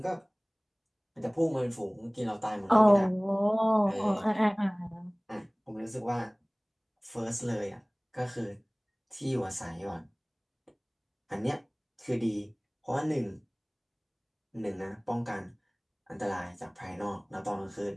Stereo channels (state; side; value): identical; both; correlation 1.00